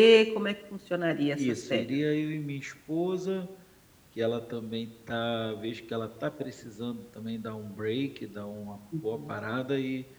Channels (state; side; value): identical; both; correlation 1.00